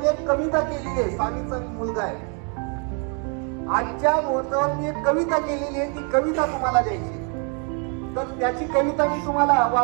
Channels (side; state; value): left; quieter; 38.1 dB